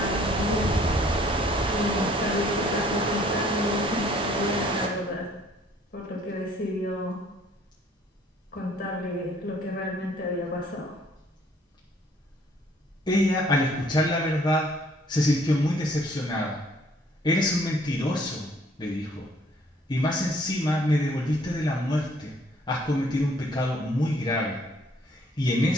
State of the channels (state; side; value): normal; both; correlation 0.60